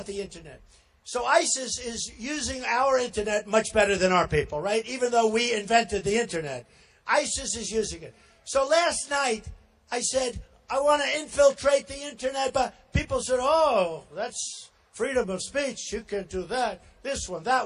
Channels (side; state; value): both; identical; correlation 1.00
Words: the internet. So ISIS is using our internet much better than our people, right? Even though we invented the internet. ISIS is using it. So last night, I said, I want to infiltrate the internet, but people said, oh, that's freedom of speech. You can't do that. This one,